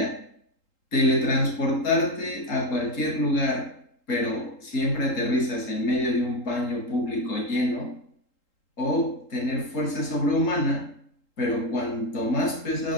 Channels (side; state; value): right; late; 3.8 ms